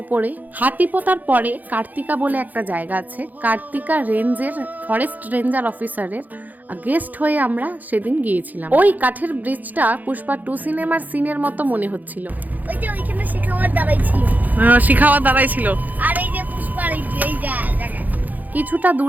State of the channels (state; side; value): late; left; 0.082 ms